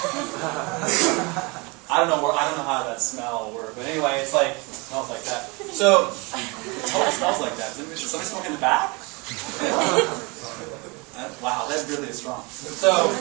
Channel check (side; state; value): left; quieter; 27.9 dB